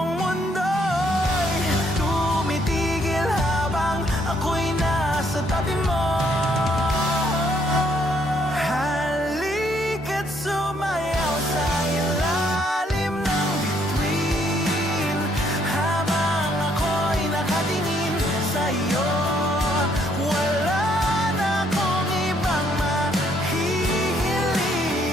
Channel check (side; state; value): both; normal; correlation 0.69